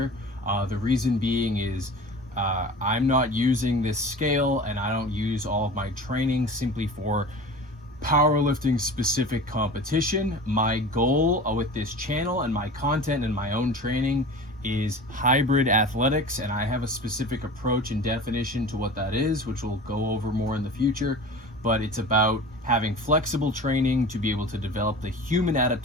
The reason being is I'm not using this scale, and I don't use all of my training simply for powerlifting specific competition. My goal with this channel and my content and my own training is hybrid athletics, and I have a specific approach and definition to what that is, which we'll go over more in the future. But it's about having flexible training to be able to develop the human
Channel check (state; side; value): normal; both; correlation 0.36